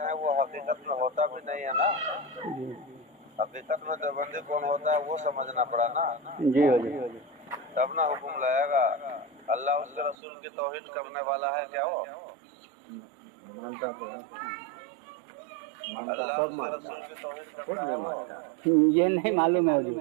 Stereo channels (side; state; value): left; drops out; at 10.2 s